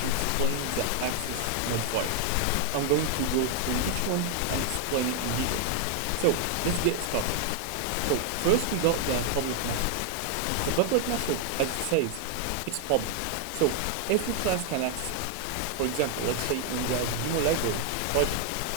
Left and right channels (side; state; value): both; different; correlation 0.00